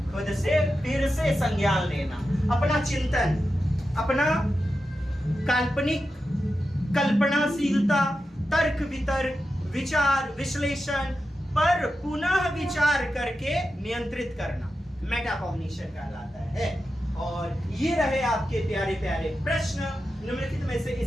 खुद से फिर से संज्ञान लेना, अपना चिंतन, अपना काल्पनिक कल्पनाशीलता, तर्क वितर्क, विचार विश्लेषण पर पुनः विचार करके नियंत्रित करना मेटाकॉग्निशन कहलाता है। और ये रहे आपके प्यारे प्यारे प्रश्न। निम्नलिखित में से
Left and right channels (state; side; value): normal; both; correlation 0.90